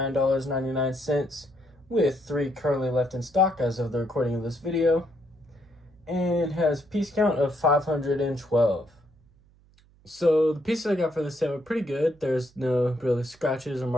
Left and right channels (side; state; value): right; noise; hum, 30 dB below the sound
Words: with 3 currently left in stock as of the recording of this video, and has piece count of 512. So the pieces I got for this set were pretty good. There's no really scratches or